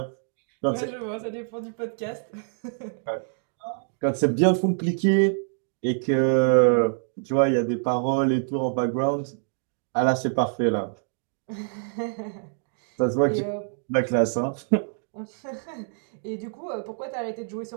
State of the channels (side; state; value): left; silent; 61 dB below the other